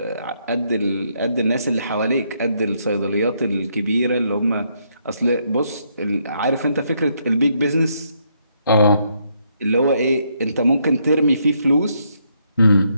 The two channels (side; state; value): both; inverted; correlation -0.74